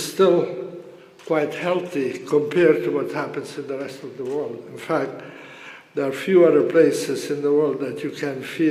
still quite healthy compared to what happens in the rest of the world. In fact, there are few other places in the world that you can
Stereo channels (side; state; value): both; identical; correlation 1.00